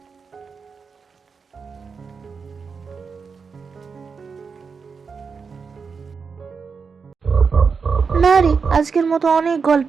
না রে, আজকের মতো অনেক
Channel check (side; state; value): left; quieter; 5.4 dB